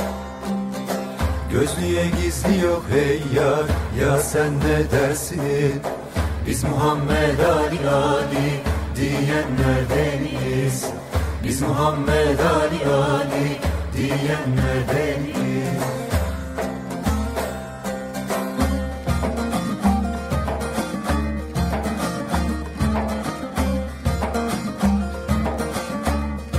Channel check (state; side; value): identical; both; correlation 1.00